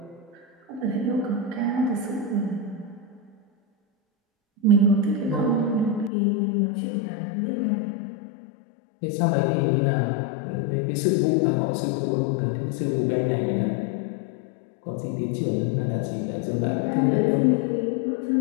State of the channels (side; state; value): right; drops out; at 6.1 s